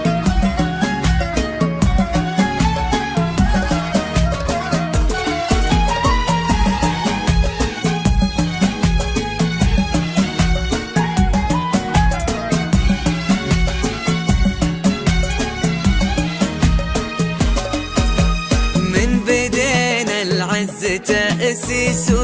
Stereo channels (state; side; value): identical; both; correlation 1.00